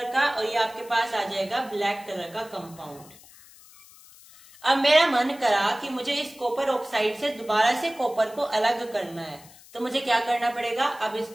का, और ये आपके पास आ जाएगा ब्लैक कलर का कंपाउंड। अब मेरा मन करा कि मुझे इस कॉपर ऑक्साइड से दोबारा से कॉपर को अलग करना है, तो मुझे क्या करना पड़ेगा? अब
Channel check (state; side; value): noise; left; hiss, 22 dB below the sound